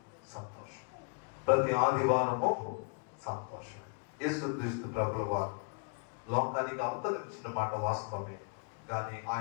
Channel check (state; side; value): quieter; right; 37.4 dB